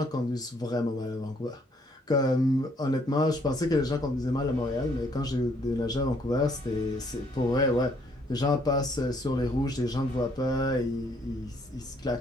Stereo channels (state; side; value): normal; both; correlation 0.66